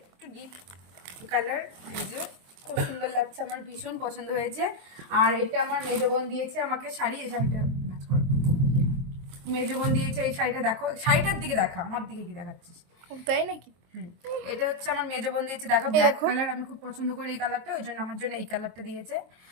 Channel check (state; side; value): late; left; 23 ms